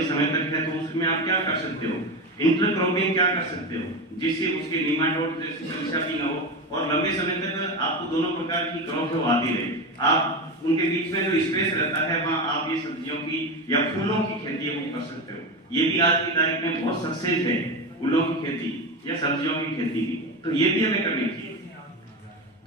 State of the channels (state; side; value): normal; both; correlation 0.20